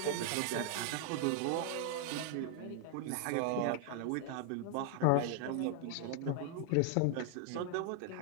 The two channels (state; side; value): different; both; correlation 0.00